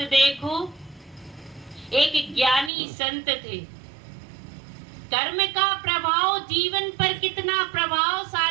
देखो, एक ज्ञानी संत थे। कर्म का प्रभाव जीवन पर कितना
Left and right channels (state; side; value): drops out; left; at 2.7 s